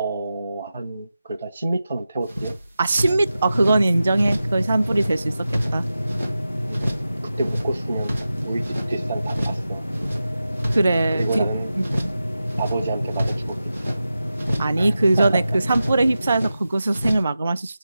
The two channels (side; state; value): both; inverted; correlation -0.92